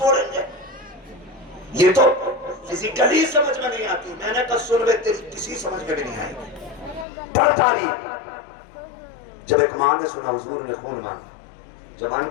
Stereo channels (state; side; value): drops out; right; at 7.1 s